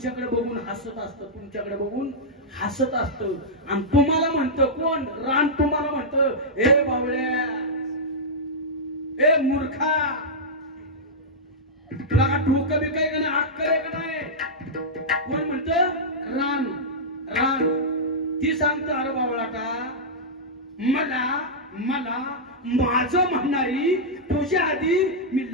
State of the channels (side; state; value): both; normal; correlation -0.10